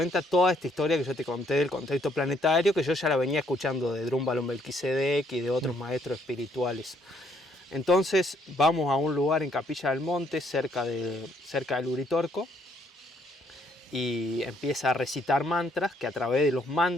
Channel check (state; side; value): normal; both; correlation 0.69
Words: toda esta historia que yo te conté del contexto planetario, que yo ya la venía escuchando de Drúmbalo Melquisedec y de otros maestros espirituales. Entonces vamos a un lugar en Capilla del Monte, cerca del Uritorco, y empieza a recitar mantras, que a través de los